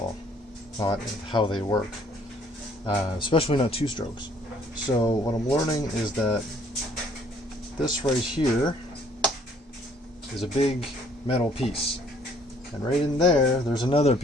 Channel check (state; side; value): normal; both; correlation 0.61